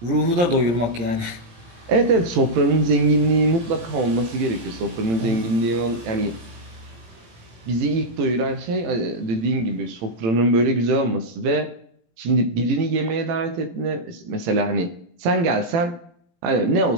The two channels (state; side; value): late; left; 18 ms